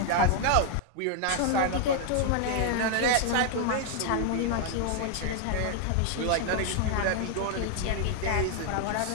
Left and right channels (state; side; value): different; both; correlation 0.00